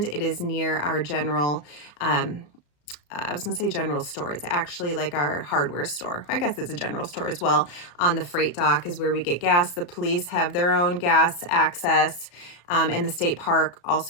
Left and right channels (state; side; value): late; right; 34 ms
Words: It is near our general I was going to say general store. It's actually like our hardware store. I guess it's a general store as well. On the freight dock is where we get gas. The police have their own gas access, and the state park